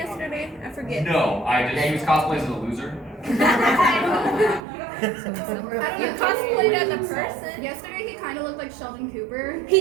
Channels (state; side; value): drops out; left; at 4.6 s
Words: I forget. No, I Yeah, he was just. cosplayed as a loser. You cosplayed as a person. Yesterday he kind of looked like Sheldon Cooper. He